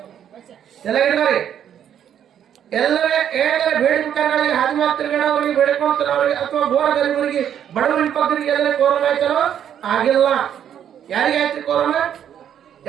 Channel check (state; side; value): quieter; left; 9.5 dB